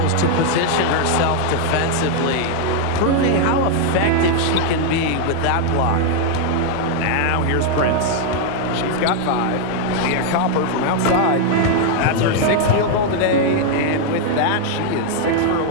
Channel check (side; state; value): both; different; correlation 0.00